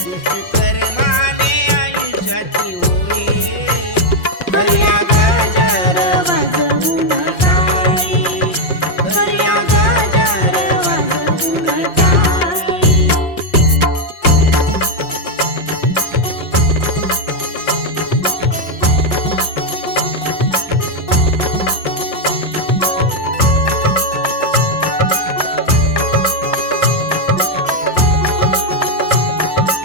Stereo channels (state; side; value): late; right; 5.7 ms